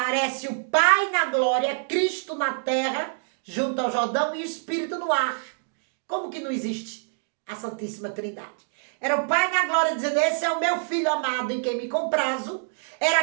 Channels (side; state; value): left; silent; digital silence